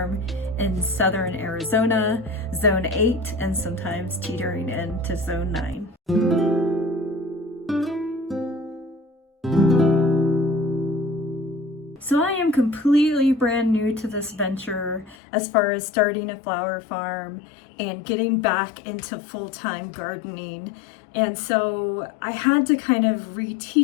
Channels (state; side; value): drops out; right; at 15.2 s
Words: in southern Arizona, zone 8, and sometimes teetering into zone 9. So I am completely brand new to this venture as far as starting a flower farm and getting back into full-time gardening. And so I had to kind of